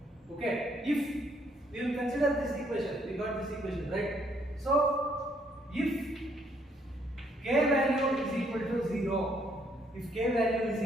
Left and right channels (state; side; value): normal; both; correlation 0.69